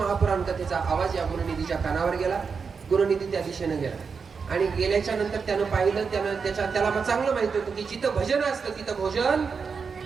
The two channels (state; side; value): quieter; left; 5.5 dB